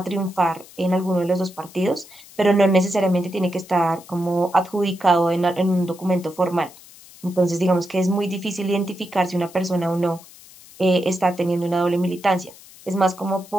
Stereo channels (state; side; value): noise; left; hiss, 21 dB below the sound